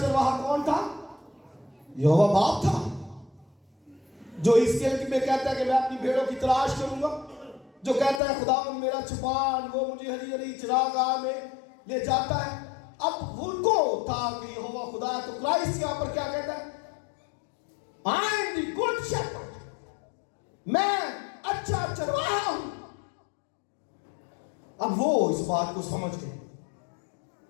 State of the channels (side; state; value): right; drops out; at 8.2 s